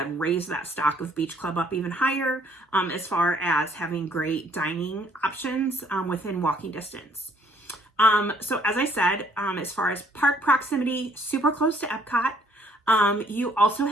raise that stock of Beach Club up even higher as far as having great dining options within walking distance. So as I said, as far as park proximity, super close to Epcot. You also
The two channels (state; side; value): normal; both; correlation 0.64